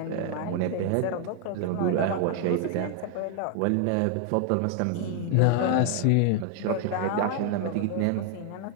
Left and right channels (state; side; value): different; both; correlation 0.00